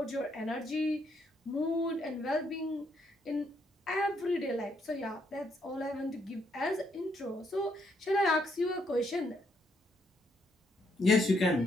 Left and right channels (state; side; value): normal; both; correlation 0.74